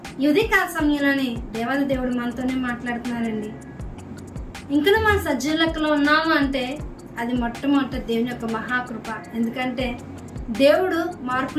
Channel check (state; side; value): identical; both; correlation 1.00